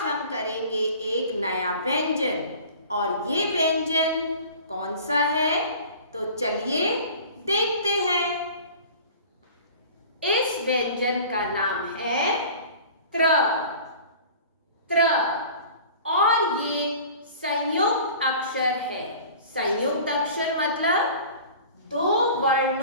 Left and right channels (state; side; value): inverted; both; correlation -0.42